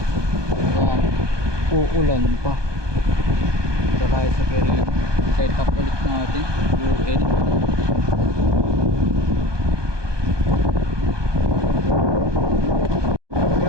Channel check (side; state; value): left; late; 1.2 ms